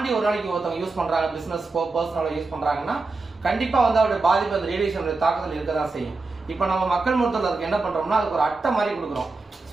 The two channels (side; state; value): left; quieter; 3.7 dB